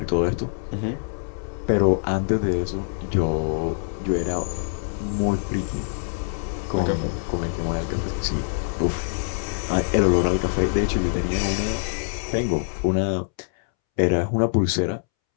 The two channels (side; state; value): right; silent; 62 dB below the other